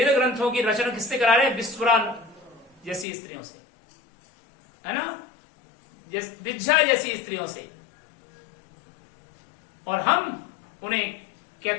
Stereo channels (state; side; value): drops out; right; at 3.1 s